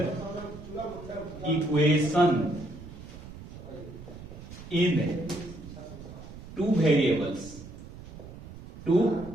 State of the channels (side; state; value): right; noise; rumble, 14 dB below the sound